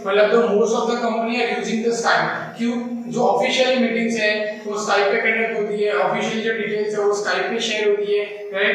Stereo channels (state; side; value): identical; both; correlation 1.00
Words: मतलब the most of the company are using the Skype. क्यों? जो ऑफिशियल मीटिंग्स है वो स्काइप पे कंडक्ट होती है, ऑफिशियल जो डिटेल्स है वो स्काइप पे शेयर होती है,